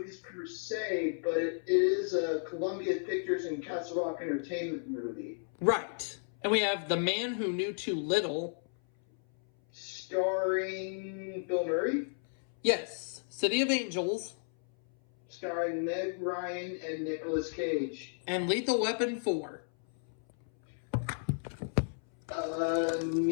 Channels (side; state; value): right; silent; 56 dB below the other